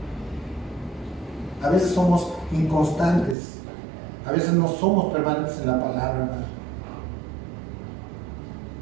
A veces somos inconstantes, a veces no somos permanentes en la palabra, hermano.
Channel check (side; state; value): left; drops out; at 3.4 s